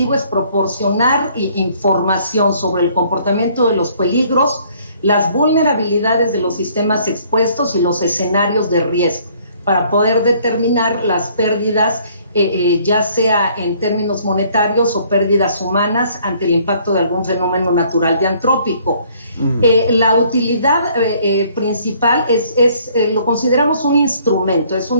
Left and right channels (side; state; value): both; inverted; correlation -0.61